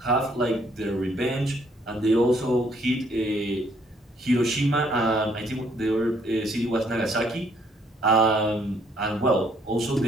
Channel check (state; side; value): normal; both; correlation 0.66